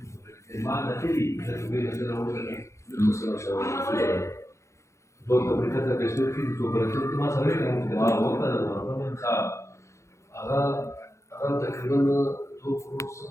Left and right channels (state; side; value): late; right; 0.14 ms